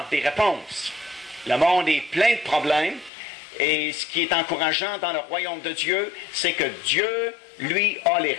des réponses. Le monde est plein de problèmes, et ce qui est encourageant dans le royaume de Dieu, c'est que Dieu, lui, a les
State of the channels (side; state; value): right; drops out; at 3.1 s